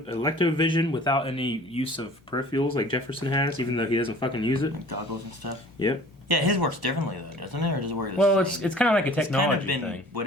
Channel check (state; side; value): normal; both; correlation 0.48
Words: vision without any use of peripherals like Jefferson has, even though he doesn't fucking use it. Like goggles and stuff? Yep. Yeah, his works differently though, doesn't it? Or does it work the Well, same? it's kind of like a technology it's kind of been thing.